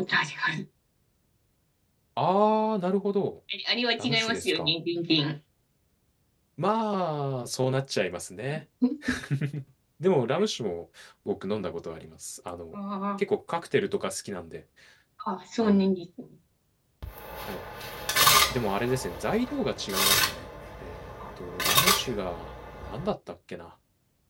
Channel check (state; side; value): identical; both; correlation 1.00